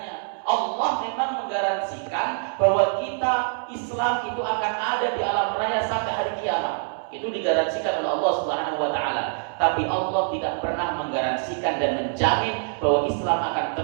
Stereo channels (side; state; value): left; silent; 62 dB below the other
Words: Allah memang menggaransikan bahwa kita Islam itu akan ada di alam raya sampai hari kiamat. Itu digaransikan oleh Allah Subhanahu wa taala. Tapi Allah tidak pernah menggaransikan dan menjamin bahwa Islam akan